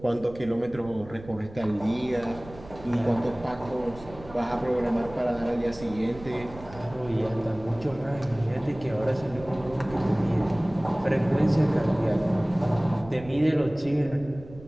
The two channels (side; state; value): right; noise; rumble, 18 dB below the sound